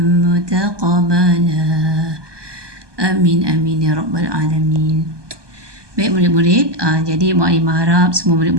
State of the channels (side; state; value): left; late; 1.2 ms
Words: متقبلا آمين آمين يا رب العالمين. Baik murid-murid, jadi Mu'alimah harap semua